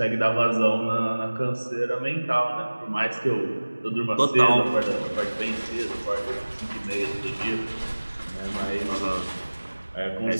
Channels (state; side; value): inverted; both; correlation -1.00